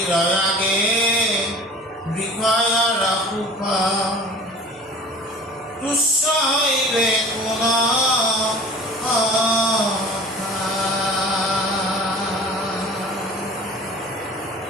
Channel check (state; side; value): normal; both; correlation 0.43